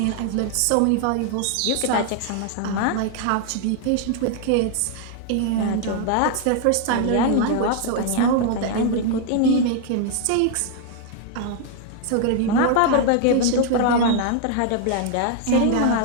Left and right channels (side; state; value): both; different; correlation 0.00